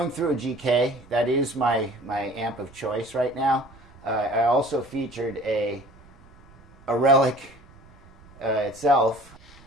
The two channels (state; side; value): noise; right; rumble, 24 dB below the sound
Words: through a GK. That is my amp of choice right now. I also featured a Relic itself.